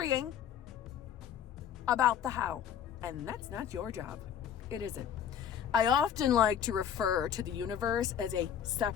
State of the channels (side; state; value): right; quieter; 8.9 dB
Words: about the how, and that's not your job. It isn't. I often like to refer to the universe as a